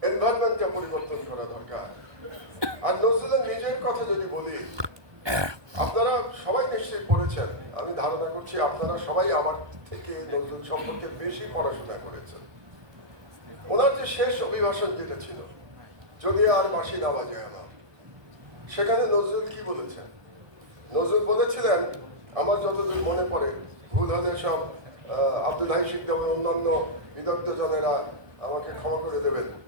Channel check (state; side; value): late; left; 1.2 ms